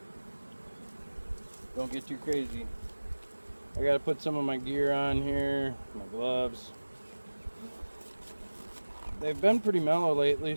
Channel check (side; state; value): both; inverted; correlation -1.00